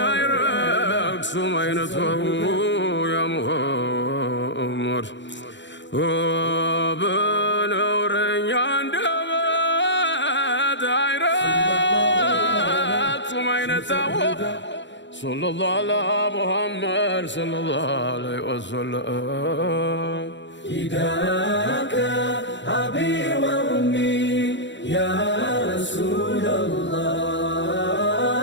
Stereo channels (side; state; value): right; late; 0.53 ms